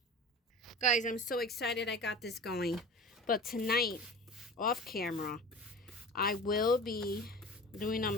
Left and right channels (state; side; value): normal; both; correlation 0.36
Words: Guys, I'm so excited I got this going. But tonight, off camera, I will be doing